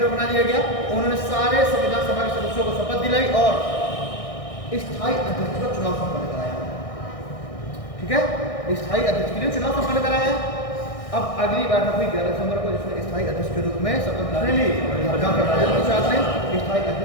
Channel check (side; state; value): right; late; 1.6 ms